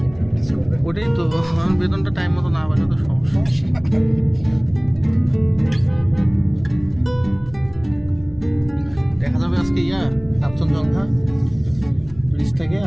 ওটাই তো বেতনটা টাইম মতো না পারে তো সমস্যা। দেখা যাবে আজকে কাঞ্চনজঙ্ঘা ব্রিজ থেকে।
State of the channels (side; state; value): right; noise; hum, 22 dB below the sound